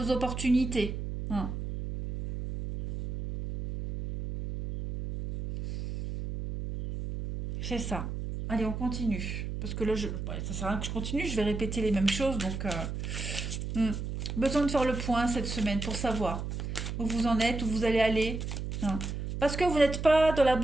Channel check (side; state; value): right; noise; hum, 5 dB below the sound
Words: opportunités. Hein. C'est ça. Allez, on continue. Parce que là, ouais, ça sert à rien que je continue, je vais répéter les mêmes choses. Donc, hmm. Besoin de faire le point cette semaine pour savoir où vous en êtes, où vous allez aller. Hein. Parce que vous n'êtes pas dans la